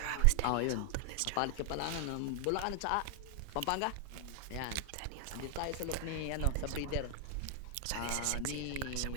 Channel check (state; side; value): different; both; correlation 0.00